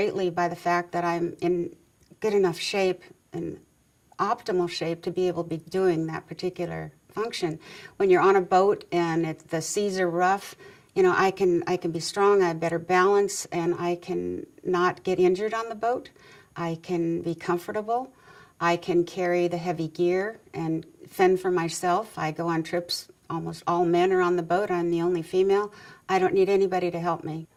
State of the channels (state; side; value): identical; both; correlation 1.00